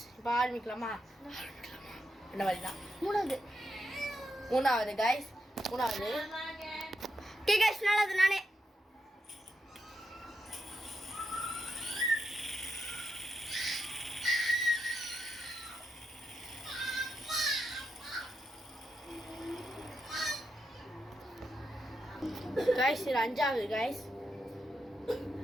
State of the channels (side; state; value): both; normal; correlation 0.84